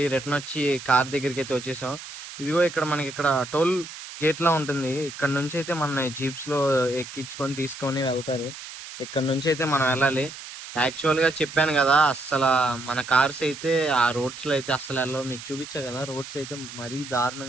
రిటర్న్ వచ్చి కార్ దగ్గరికి అయితే వచ్చేసాం. ఇదిగో ఇక్కడ మనకి ఇక్కడ టోల్ గేట్ లా ఉంటుంది. ఇక్కడ నుంచి అయితే మన జీప్స్ లో ఎక్కించుకొని తీసుకొని వెళ్తారు. ఇక్కడ నుంచి అయితే మనం వెళ్ళాలి. యాక్చువల్ గా చెప్పాను కదా, అసలు మన కార్స్ అయితే ఆ రోడ్స్ లో అయితే అసలు వెళ్ళవు. మీకు చూపించా కదా, రోడ్స్ అయితే మరీ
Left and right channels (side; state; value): right; noise; hiss, 13 dB below the sound